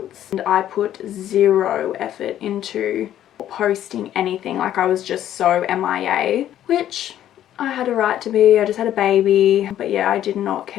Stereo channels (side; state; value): right; quieter; 11.6 dB